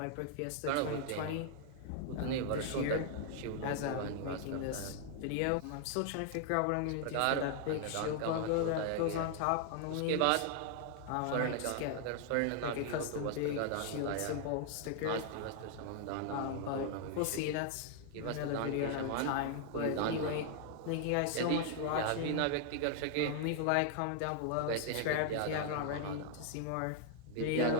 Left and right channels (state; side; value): different; both; correlation 0.00